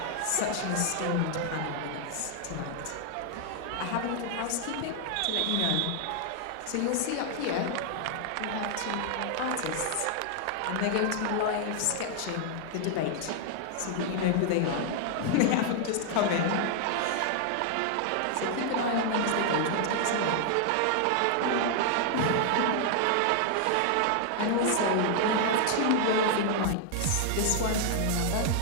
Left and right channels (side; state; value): both; different; correlation 0.00